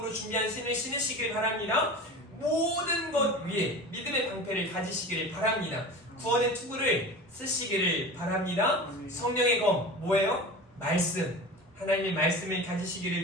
준비한 신을 신으시길 바랍니다. 모든 것 위에 믿음의 방패를 가지시기를 바랍니다. 구원의 투구를 쓰시기를 바랍니다. 성령의 검, 뭐예요? 말씀. 하나님의 말씀을 가지시기를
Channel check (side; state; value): both; normal; correlation 0.33